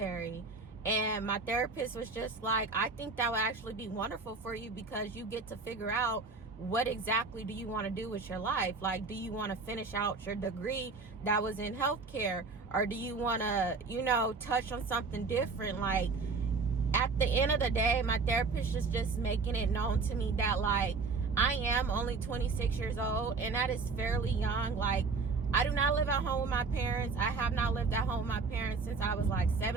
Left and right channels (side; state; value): left; quieter; 4.3 dB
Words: And my therapist was just like, I think that would actually be wonderful for you because you get to figure out what exactly do you want to do with your life. Like, do you want to finish out your degree that was in healthcare, or do you want to, you know, touch on something different? Like, at the end of the day, my therapist is just making it known to me that like I am only 26 years old, and that is fairly young. Like, I do not live at home with my parents. I have not lived at home with my parents since I was like